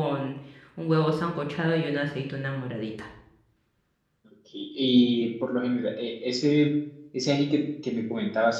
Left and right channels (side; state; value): both; identical; correlation 1.00